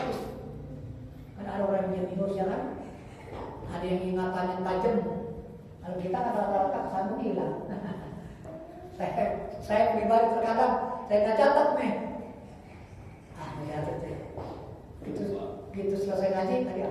Karena ada orang yang jenius ya kan, ada yang ingatannya tajam. Kalau kita kata-kata kesana hilang. Saya pribadi terkadang saya nggak catat nih. Ya gitu selesai ngaji tadi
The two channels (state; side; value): identical; both; correlation 1.00